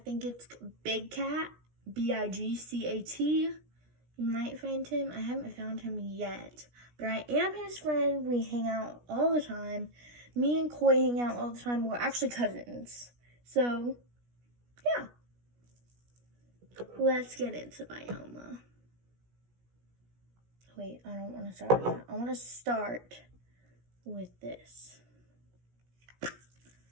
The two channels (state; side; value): late; left; 17 ms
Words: it's Big Cat, BIGCAT. You might find him. I haven't found him yet, but I am his friend. We hang out all the time. Me and Koi hang out all the time. We're actually cousins. So, yeah. Let's get into BYOMA. Wait, I don't want to start with that. I want to start with this.